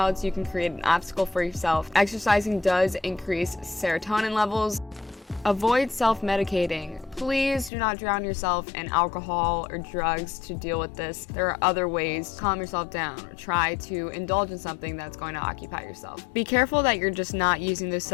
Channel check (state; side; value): drops out; right; at 7.7 s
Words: You can create an obstacle for yourself. Exercising does increase serotonin levels. Avoid self-medicating. Please do not drown yourself in alcohol or drugs to deal with this. There are other ways to calm yourself down or try to indulge in something that's going to occupy yourself. Be careful that you're just not using those